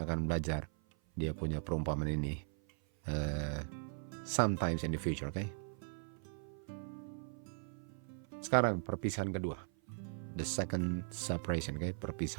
akan belajar dia punya perumpamaan ini sometimes in the future, okay? Sekarang perpisahan kedua. The second separation, okay?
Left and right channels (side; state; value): left; silent; 52 dB below the other